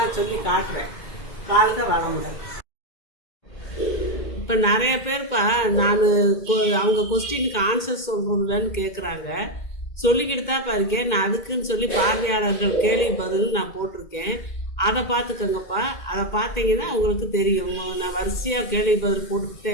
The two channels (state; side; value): late; right; 2.2 ms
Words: சொல்லி காட்டுறேன். வாழ்க வளமுடன். இப்போ நிறைய பேர்ப்பா நான் அவங்க கொஸ்டினுக்கு ஆன்சர் சொல்கிறதுலன்னு கேட்குறாங்க. சொல்லிக்கிட்டு தான்ப்பா இருக்கேன். நான் அதுக்குன்னு சொல்லி பார்வையாளர்கள் கேள்வி பதில் நான் போட்டிருக்கேன். அதை பார்த்துக்கோங்கப்பா. அதை பார்த்தீங்கன்னா உங்களுக்கு தெரியும். நான் வரிசையாக கேள்வி பதில் போட்டுக்கிட்டே